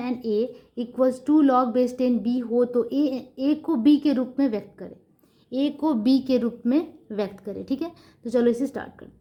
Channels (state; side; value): identical; both; correlation 1.00